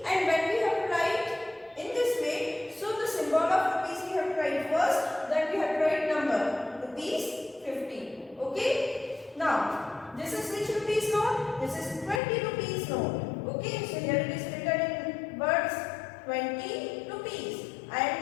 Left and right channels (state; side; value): drops out; right; at 12.2 s